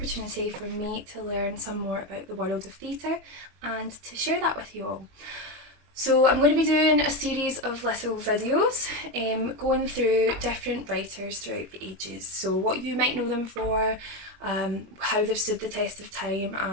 for me to learn some more about the world of theatre and to share that with you all. So I'm going to be doing a series of little videos going through different writers throughout the ages. So what you might know them for, how they've stood the test of time,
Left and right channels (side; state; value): left; late; 21 ms